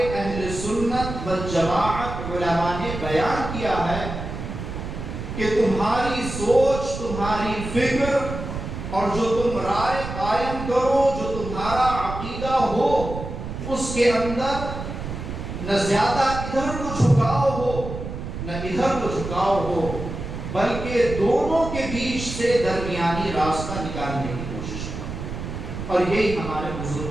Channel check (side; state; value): right; noise; rumble, 7 dB below the sound